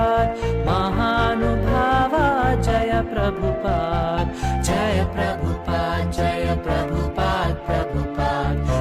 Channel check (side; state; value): both; identical; correlation 1.00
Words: महानुभावा जय प्रभुपाद जय प्रभुपाद जय प्रभुपाद